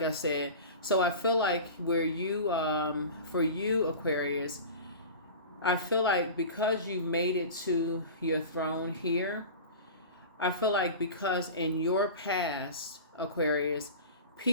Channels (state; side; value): inverted; both; correlation -0.34